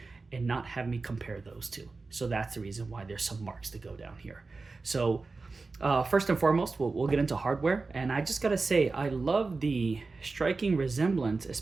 and not have me compare those two. So that's the reason why there's some marks to go down here. So First and foremost, we'll get into hardware, and I just gotta say, I love the striking resemblance,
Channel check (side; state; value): left; quieter; 3.9 dB